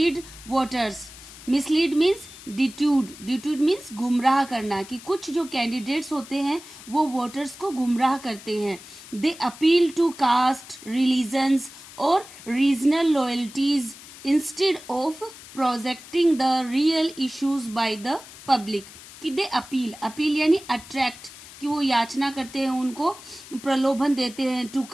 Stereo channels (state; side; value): noise; left; hiss, 17 dB below the sound